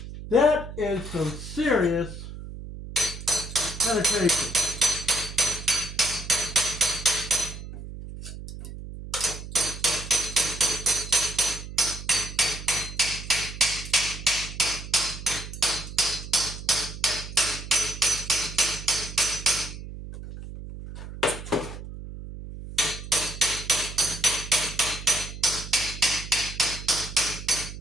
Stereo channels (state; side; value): noise; right; hum, 11 dB below the sound